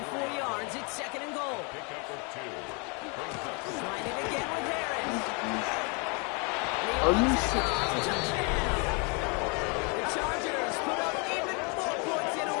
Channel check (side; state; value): right; quieter; 33.4 dB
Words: 4 yards. It's 2nd and goal. Trying it again with Harris. Are you serious? Touchdown. The Chargers put up even more points in a